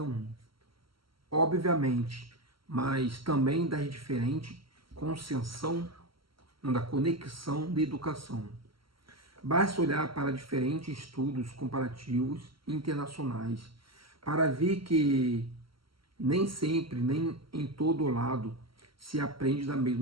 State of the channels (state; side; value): late; left; 0.74 ms